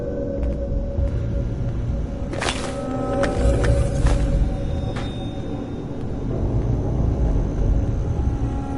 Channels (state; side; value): identical; both; correlation 1.00